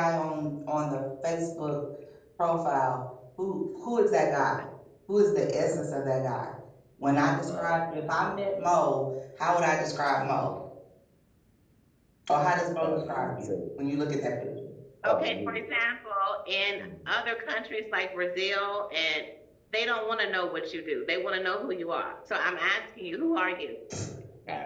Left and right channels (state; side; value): identical; both; correlation 1.00